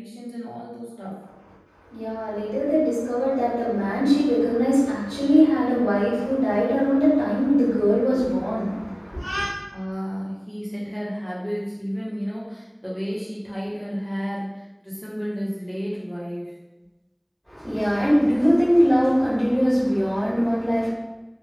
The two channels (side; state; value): both; identical; correlation 1.00